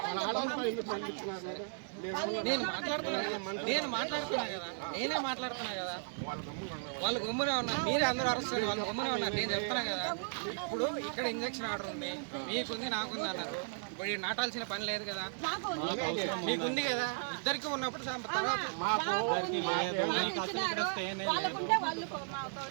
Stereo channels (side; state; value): left; silent; digital silence